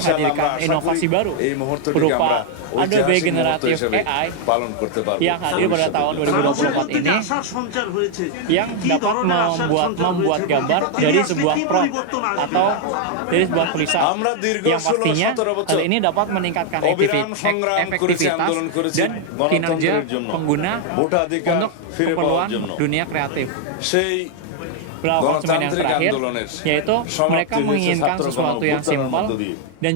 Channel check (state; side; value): different; both; correlation 0.00